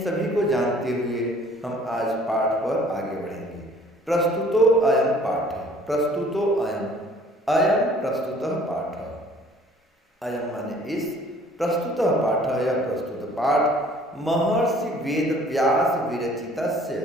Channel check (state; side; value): normal; both; correlation 0.55